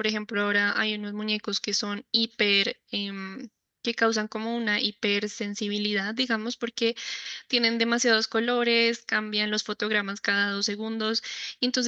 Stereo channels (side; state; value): both; identical; correlation 1.00